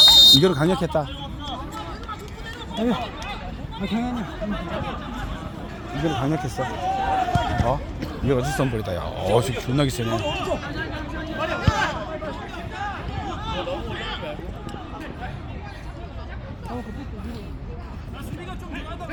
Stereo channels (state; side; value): identical; both; correlation 1.00